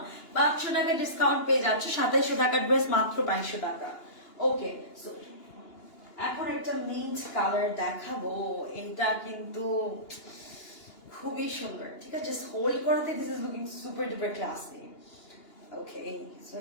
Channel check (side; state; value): right; late; 2.9 ms